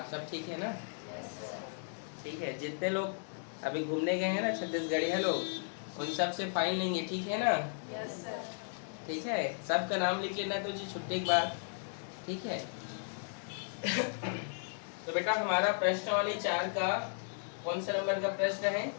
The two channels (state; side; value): silent; right; digital silence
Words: सब ठीक है ना? Yes sir. ठीक है, जितने लोग अभी घूमने गए हैं ना छत्तीसगढ़िया लोग, उन सब से फाइन लेंगे, ठीक है ना? Yes sir. ठीक है, सबका नाम लिख लेना तो जी छुट्टी के बाद, ठीक है? तो बेटा हमारा प्रश्नावली 4 का कौन सा नंबर का प्रश्न है?